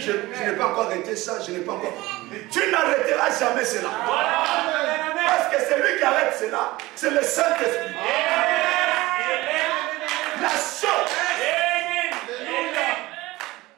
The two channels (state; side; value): quieter; left; 19.4 dB